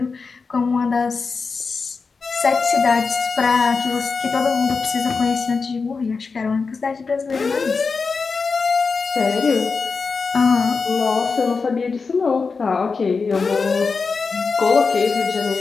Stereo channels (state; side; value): quieter; right; 4.7 dB